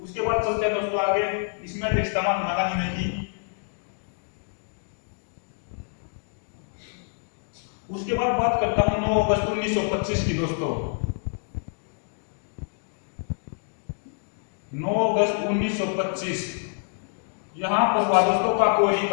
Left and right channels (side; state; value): right; silent; digital silence